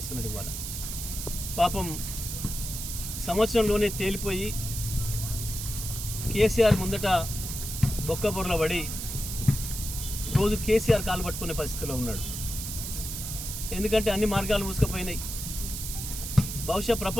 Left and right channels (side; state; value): right; noise; hiss, 6 dB below the sound